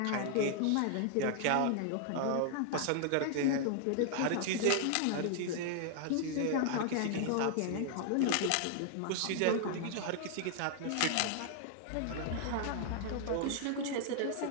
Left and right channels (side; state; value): both; different; correlation 0.00